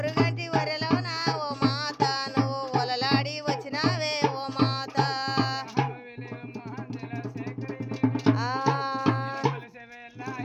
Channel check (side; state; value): both; identical; correlation 1.00